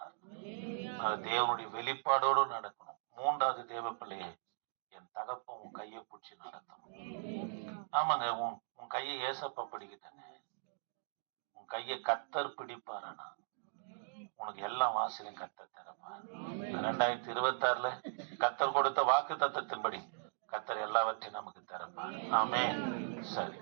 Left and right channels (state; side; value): silent; left; digital silence